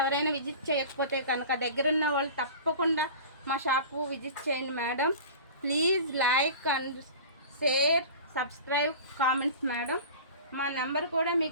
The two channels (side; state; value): both; inverted; correlation -0.37